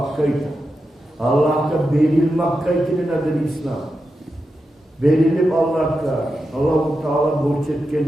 Allah'a verilmakkaydı nedir İslam? Verilip Allah-u Teala borç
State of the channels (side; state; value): both; normal; correlation 0.89